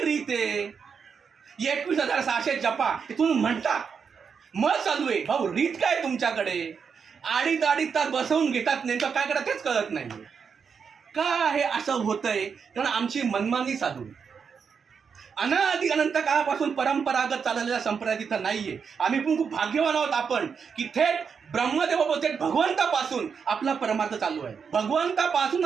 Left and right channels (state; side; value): quieter; left; 6.3 dB